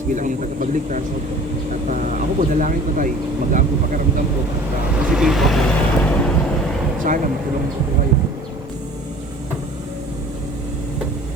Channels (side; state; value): both; normal; correlation 0.46